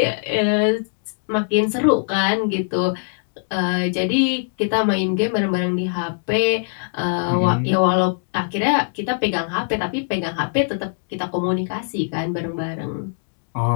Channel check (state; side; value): silent; right; digital silence